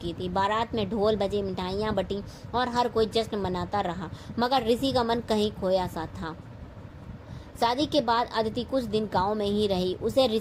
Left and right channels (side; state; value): both; identical; correlation 1.00